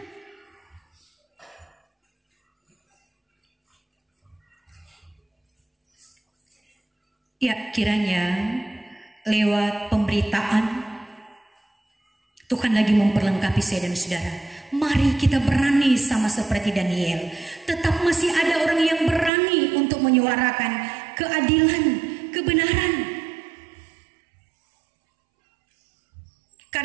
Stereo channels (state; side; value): drops out; left; at 19.3 s